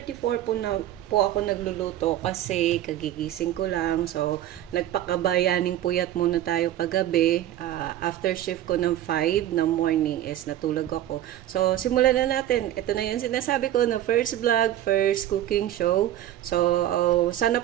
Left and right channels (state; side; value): quieter; left; 12.6 dB